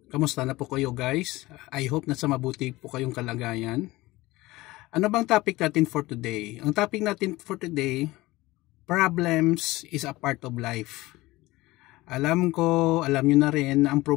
Kamusta na po kayo guys? I hope na sa mabuti po kayong kalagayan. Ano bang topic natin for today? Ang topic natin for today, problems is a part of life. Alam nyo na rin na ang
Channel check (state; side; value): quieter; right; 19.4 dB